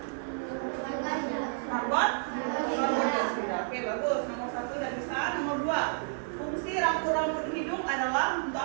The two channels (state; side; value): silent; left; 57 dB below the other